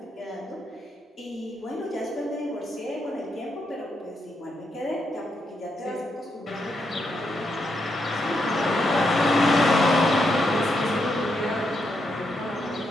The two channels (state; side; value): normal; both; correlation 0.81